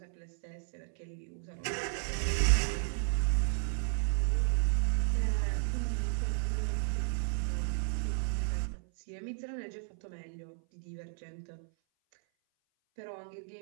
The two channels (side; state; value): left; silent; 55 dB below the other